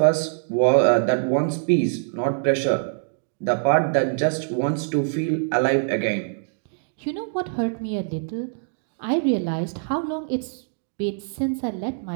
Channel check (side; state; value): left; silent; digital silence